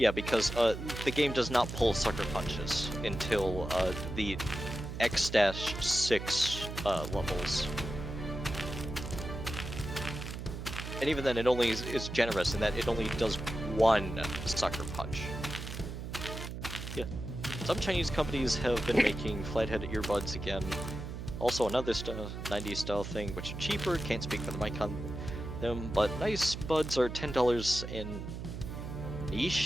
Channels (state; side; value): noise; right; hum, 7 dB below the sound